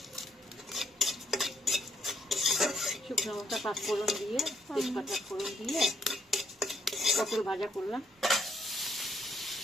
শুকনো লঙ্কা পাঁচফোড়ন দিয়ে, তেজপাতা ফোড়ন দিয়ে পটল ভাজা করলাম।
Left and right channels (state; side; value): normal; both; correlation 0.71